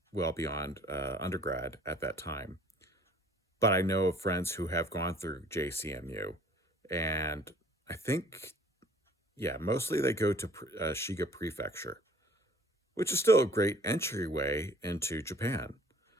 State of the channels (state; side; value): normal; both; correlation 0.54